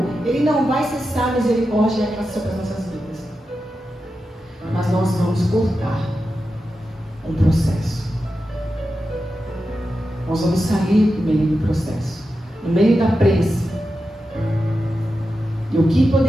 Ele não vai cessar a misericórdia e a graça sobre as nossas vidas. Mas nós vamos cortar um processo. Nós vamos sair no meio do processo, no meio da prensa. E o que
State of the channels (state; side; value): normal; both; correlation 0.90